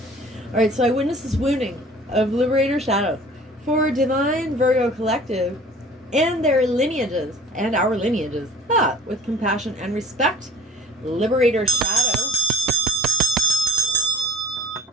All right, so I witnessed this wounding of liberator shadow for divine Virgo collective and their lineages and our lineages. With compassion and respect, liberator shadow,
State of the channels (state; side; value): normal; both; correlation 0.47